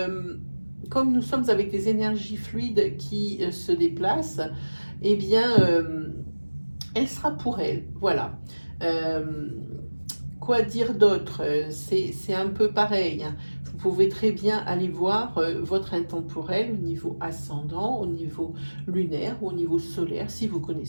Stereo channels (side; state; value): both; inverted; correlation -1.00